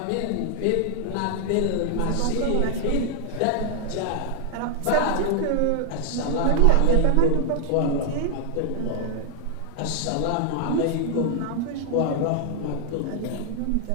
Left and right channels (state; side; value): different; both; correlation 0.00